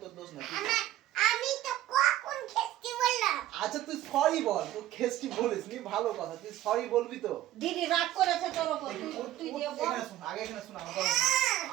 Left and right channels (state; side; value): quieter; left; 13.8 dB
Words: তোর দোষ নাই। আমি তো কখন খেস্তি বললাম? আচ্ছা তুই সরি বল, তুই খেস্টি বলিস নি, ভালো কথা, তুই সরি বলবি তো। দিদি রাগ করেছে তোর উপর, তুই দিয়ে বল। এখানে শুন, আগে এখানে শুন,